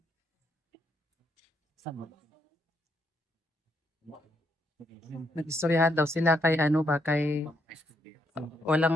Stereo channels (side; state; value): both; normal; correlation 0.76